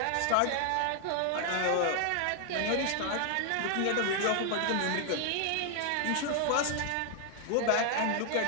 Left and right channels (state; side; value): different; both; correlation 0.00